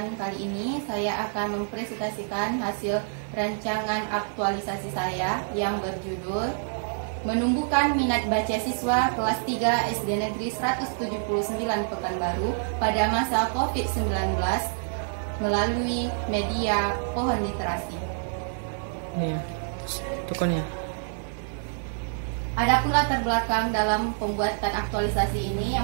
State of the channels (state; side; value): silent; left; 58 dB below the other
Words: kali ini saya akan mempresentasikan hasil rancangan aktualisasi saya yang berjudul Menumbuhkan Minat Baca Siswa Kelas 3 SD Negeri 179 Pekanbaru pada masa COVID-19 melalui media Pohon Literasi. Nih, tukannya. Adapun latar belakang dalam pembuatan aktualisasi ini,